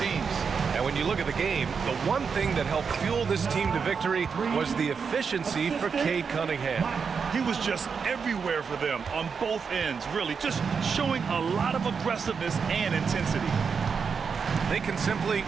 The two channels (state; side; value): quieter; left; 5.9 dB